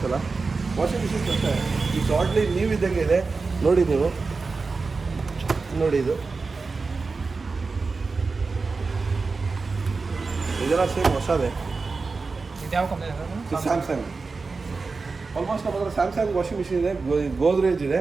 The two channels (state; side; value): quieter; left; 4.2 dB